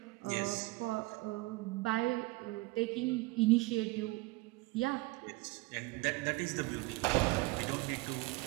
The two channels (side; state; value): left; quieter; 22.5 dB